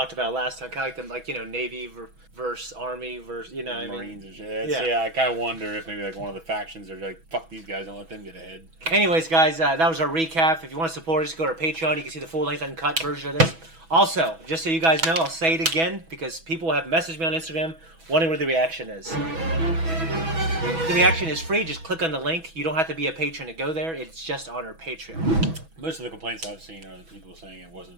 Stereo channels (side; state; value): left; late; 6.1 ms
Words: about last time. Kind of like them, like, you know, Navy versus Army versus, you know, Marines I mean. and shit. Yeah. Yeah, I kind of wonder if maybe like one of the factions are like, fuck these guys, don't let them get ahead. Anyways, guys, that was our recap. If you want to support us, go to our Patreon. You can see the full-length uncut version of this. Also, just so you guys know, I'll say it again because people have messaged me on Instagram wondering where the reaction is. The reaction is free. Just click on the link. You don't have to be a patron to go there. It's just on our Patreon. Most of the complaints I've seen are the people saying it